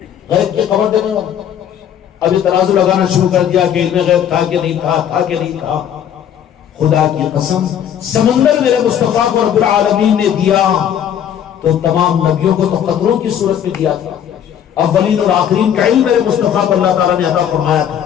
غیب کی خبر دینے والا. ابھی ترازو لگانا شروع کر دیا کہ علم غیب تھا کہ نہیں تھا، تھا کہ نہیں تھا. خدا کی قسم سمندر میرے مصطفیٰ کو رب العالمین نے دیا تو تمام نبیوں کو تو قطروں کی صورت میں دیا تھا. اولین اور آخرین کا علم میرے مصطفیٰ کو اللہ تعالیٰ نے عطا فرمایا تھا.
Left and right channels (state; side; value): quieter; right; 9.4 dB